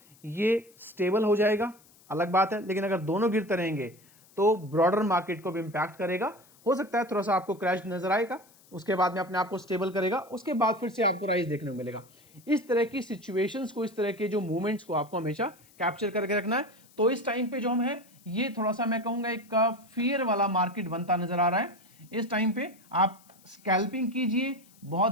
ये स्टेबल हो जाएगा, अलग बात है, लेकिन अगर दोनों गिरते रहेंगे तो ब्रॉडर मार्केट को भी इंपैक्ट करेगा। हो सकता है थोड़ा सा आपको क्रैश नजर आएगा, उसके बाद में अपने आप को स्टेबल करेगा, उसके बाद फिर से आपको राइज देखने को मिलेगा। इस तरह की सिचुएशंस को, इस तरह के जो मूवमेंट्स को आपको हमेशा कैप्चर करके रखना है। तो इस टाइम पे जो हम है, ये थोड़ा सा मैं कहूँगा एक फियर वाला मार्केट बनता नजर आ रहा है। इस टाइम पे आप स्कैल्पिंग कीजिए,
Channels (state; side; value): noise; left; hiss, 28 dB below the sound